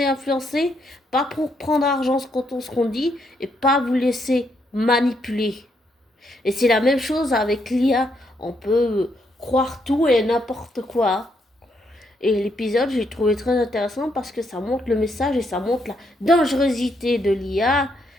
influencer, pas pour prendre argent quand on se qu'on dit et pas vous laisser manipuler. Et c'est la même chose avec l'IA. On peut croire tout et n'importe quoi. Et l'épisode, j'ai trouvé très intéressant parce que ça montre le message et ça montre la dangerosité de l'IA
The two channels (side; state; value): both; normal; correlation 0.76